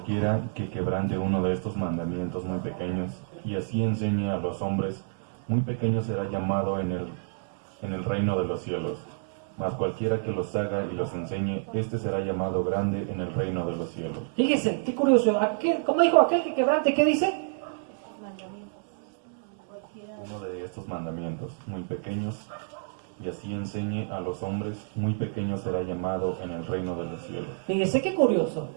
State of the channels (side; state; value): left; silent; digital silence